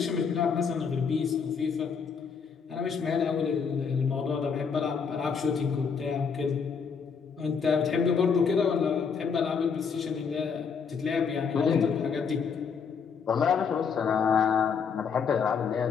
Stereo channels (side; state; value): right; quieter; 6.1 dB